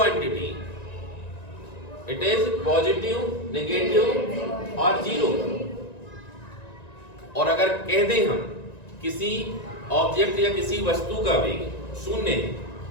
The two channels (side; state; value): right; late; 1.9 ms